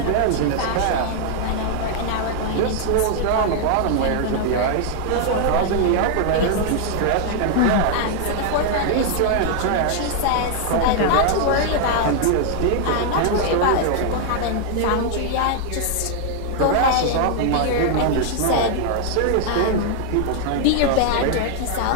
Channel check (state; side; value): different; both; correlation 0.00